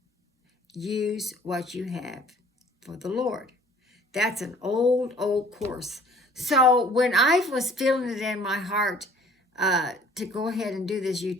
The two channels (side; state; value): both; normal; correlation 0.54